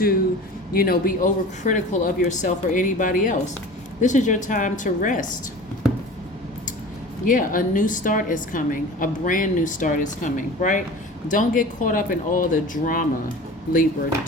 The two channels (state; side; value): normal; both; correlation 0.38